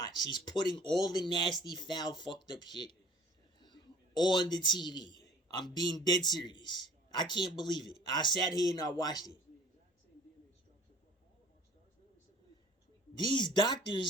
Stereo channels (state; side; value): normal; both; correlation 0.50